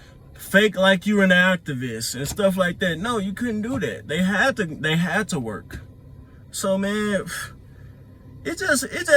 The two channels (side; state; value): both; identical; correlation 1.00